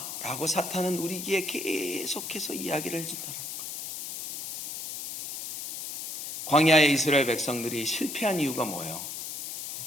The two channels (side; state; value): left; noise; hiss, 7 dB below the sound